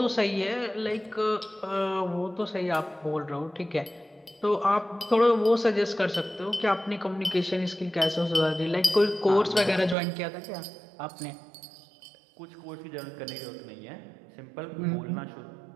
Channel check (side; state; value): left; drops out; at 10.0 s